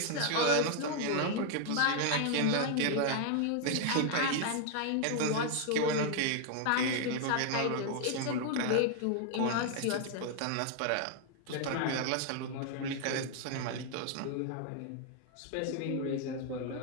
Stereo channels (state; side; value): different; both; correlation 0.00